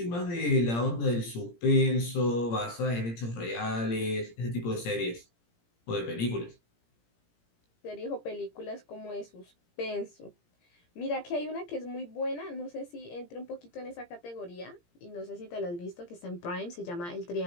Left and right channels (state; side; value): late; right; 17 ms